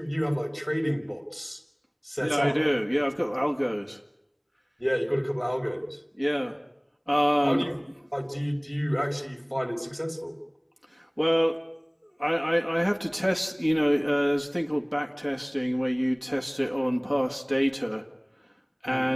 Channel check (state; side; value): identical; both; correlation 1.00